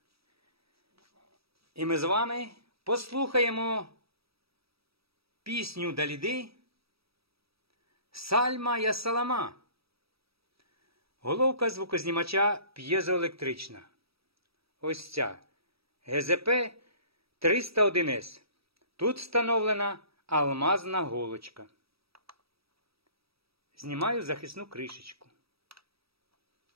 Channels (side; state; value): left; late; 0.76 ms